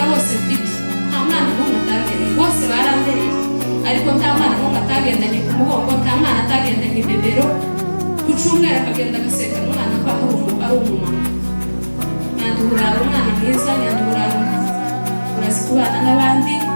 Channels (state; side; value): inverted; both; correlation -1.00